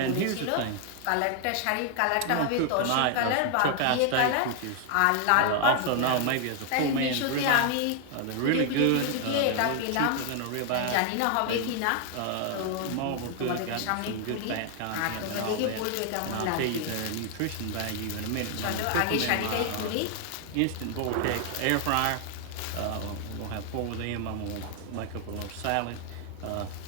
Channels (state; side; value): different; both; correlation 0.00